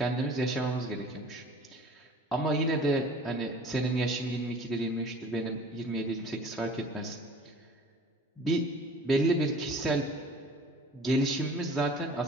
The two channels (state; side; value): normal; both; correlation 0.46